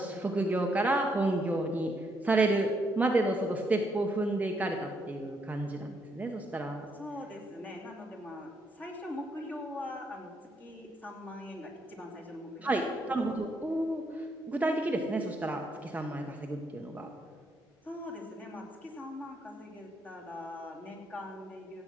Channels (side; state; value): both; normal; correlation 0.75